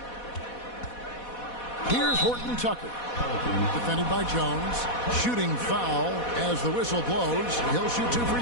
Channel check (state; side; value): late; right; 4.1 ms